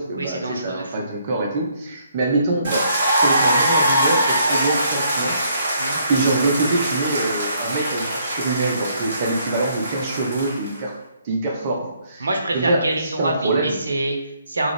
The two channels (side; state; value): both; inverted; correlation -0.69